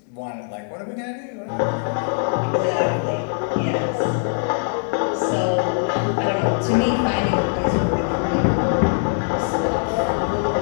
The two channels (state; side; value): silent; right; 64 dB below the other